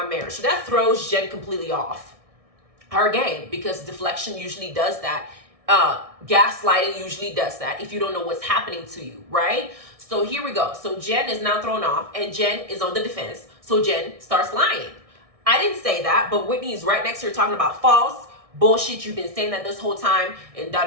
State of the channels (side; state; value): left; late; 1.6 ms